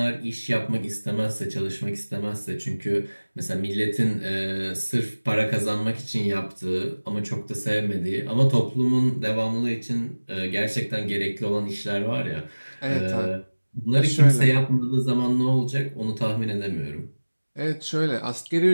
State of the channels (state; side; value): inverted; both; correlation -1.00